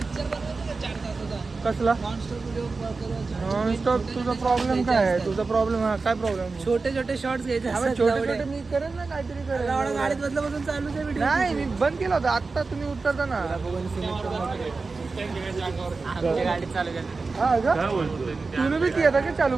कसला नॉनस्टॉप. तुझा प्रॉब्लेम काय आहे? तुझा प्रॉब्लेम काय प्रॉब्लेम? छोटे छोटे शॉर्ट्स घ्यायचे असतात छोटे तेवढे. छोटे मी करेन ना काहीतरी करेन. एवढा गाडीत बदलापासून चालू आहे व्हिडिओ. नाही मी बंद केला होता आता तुम्ही उतरता ना. आमच्या गाडीत चालू केलं. हा का तुम्ही बी केला का चालू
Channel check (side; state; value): left; quieter; 4.1 dB